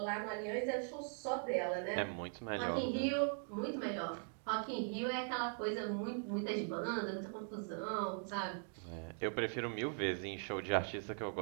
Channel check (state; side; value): silent; left; 51 dB below the other